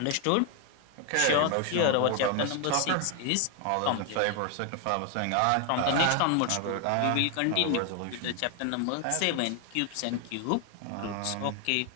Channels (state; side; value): different; both; correlation 0.00